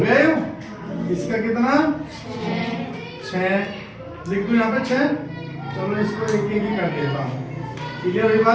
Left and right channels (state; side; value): identical; both; correlation 1.00